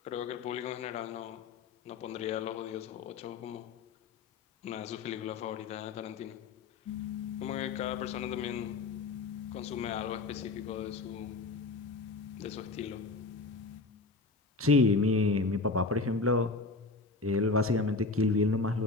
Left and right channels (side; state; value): right; quieter; 3.7 dB